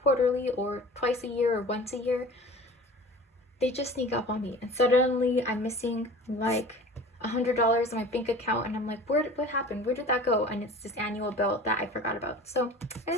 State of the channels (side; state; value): both; normal; correlation 0.41